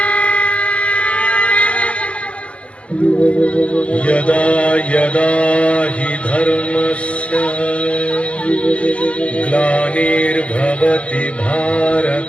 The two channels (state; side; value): late; right; 0.061 ms